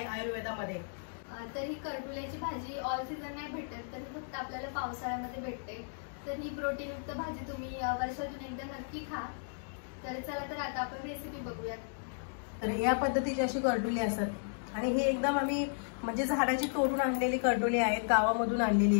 आयुर्वेदामध्ये। तर ही करटुल्याची भाजी ऑल सीझन नाही भेटत, तर फक्त आपल्याला पावसाळ्यामध्ये भेटते। तर ही प्रोटीनयुक्त भाजी तुम्ही वर्षातून एकदा नक्की खा। तर चला तर आता आपण रेसिपी बघूयात। तर या पद्धतीची अशी करटुली असतात आणि ही एकदम आम्ही म्हणजे झाडाची तोडून आणलेली करटुली आहेत, गावामधून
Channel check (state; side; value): silent; right; digital silence